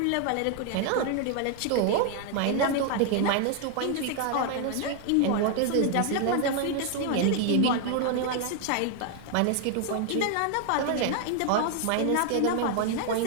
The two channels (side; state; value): both; different; correlation 0.00